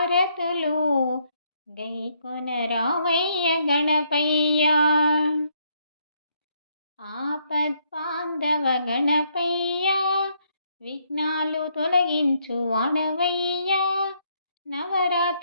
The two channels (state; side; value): inverted; both; correlation -0.72